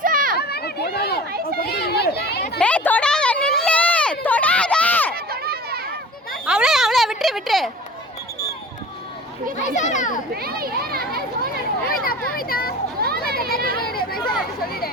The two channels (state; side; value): normal; both; correlation 0.40